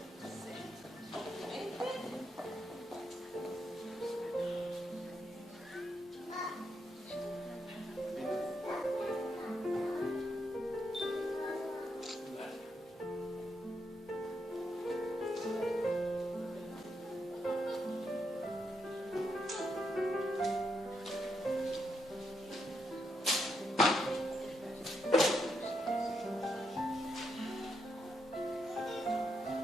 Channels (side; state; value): both; normal; correlation 0.81